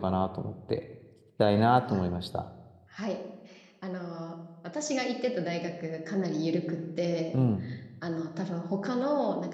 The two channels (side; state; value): both; identical; correlation 1.00